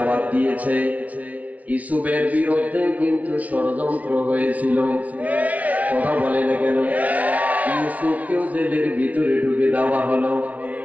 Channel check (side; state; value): left; late; 0.070 ms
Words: দিয়েছে, ইউসুফের বিরুদ্ধে কিন্তু ষড়যন্ত্র হয়েছিল। কথা বলে না কেন? ইউসুফকেও জেলের ভিতরে ঢুকে দেওয়া হলো।